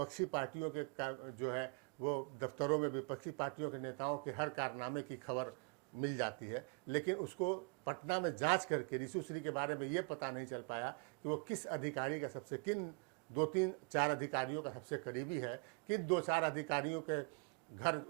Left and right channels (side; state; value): left; quieter; 36.4 dB